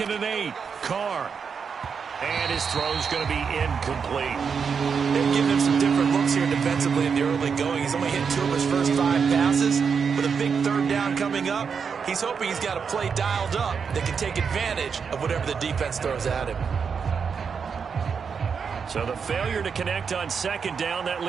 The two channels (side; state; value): left; quieter; 6.2 dB